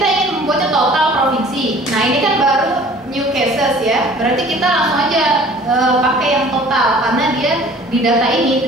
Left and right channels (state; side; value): normal; both; correlation 0.49